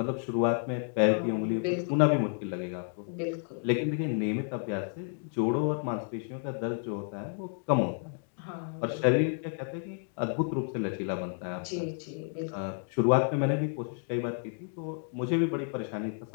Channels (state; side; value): silent; right; 57 dB below the other